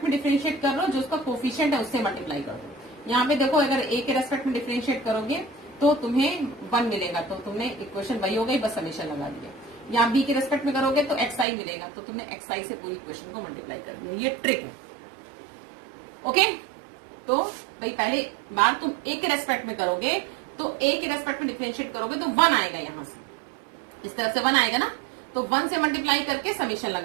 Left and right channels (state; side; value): drops out; left; at 11.5 s